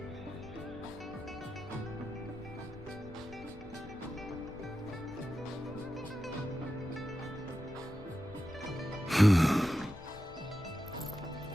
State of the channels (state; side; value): noise; left; rumble, 17 dB below the sound